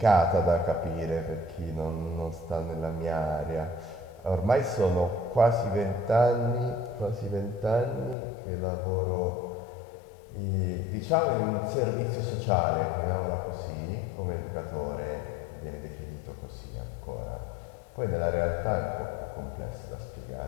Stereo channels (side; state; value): right; drops out; at 8.2 s